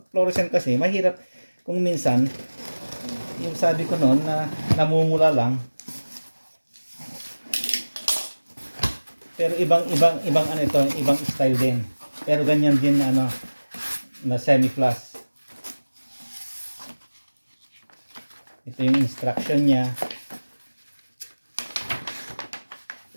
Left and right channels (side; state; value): both; inverted; correlation -1.00